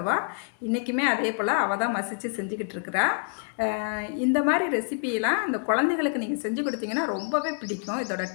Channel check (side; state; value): right; silent; 60 dB below the other